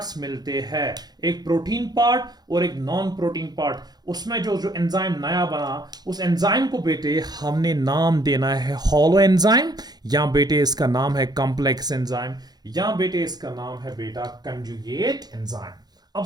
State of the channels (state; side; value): late; left; 0.19 ms